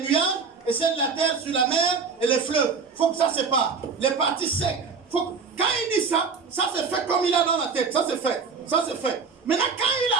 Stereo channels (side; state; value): left; quieter; 5.2 dB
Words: et celle de la terre sur la mer et les fleuves. Il faut que ça se sépare. Les parties secs. Quand il dit ça, ça se fait comme il a dans la tête. Ça se fait. Ça se fait. Maintenant, quand il